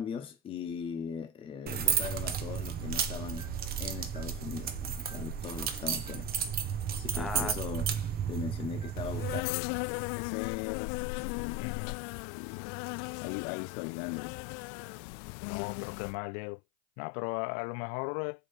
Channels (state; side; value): drops out; right; at 9.4 s